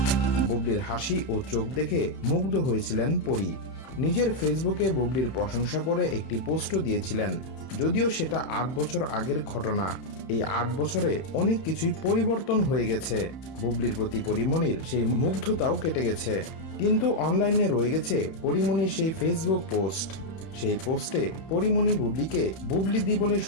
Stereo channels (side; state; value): right; late; 31 ms